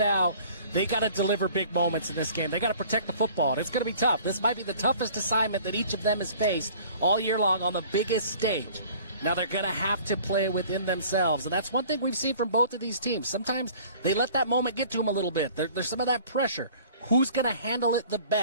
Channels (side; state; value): both; inverted; correlation -0.49